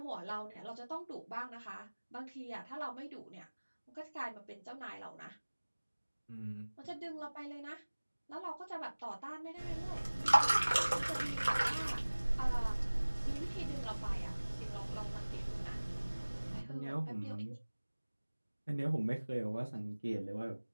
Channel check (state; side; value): inverted; both; correlation -1.00